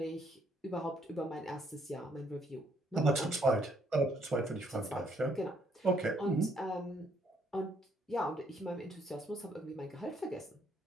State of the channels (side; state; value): both; normal; correlation 0.69